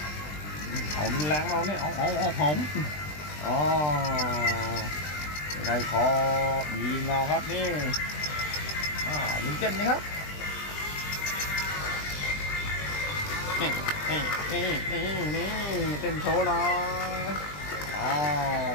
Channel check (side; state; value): right; late; 20 ms